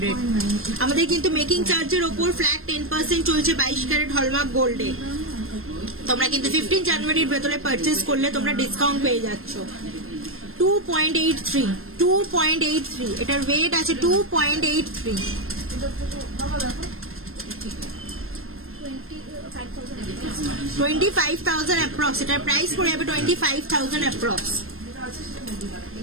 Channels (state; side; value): late; left; 0.61 ms